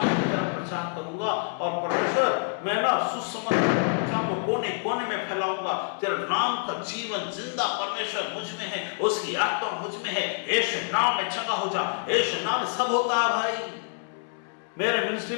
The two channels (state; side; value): silent; right; 60 dB below the other